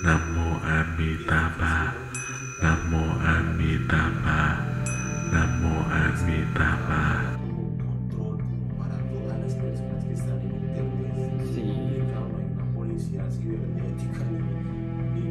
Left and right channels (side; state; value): both; identical; correlation 1.00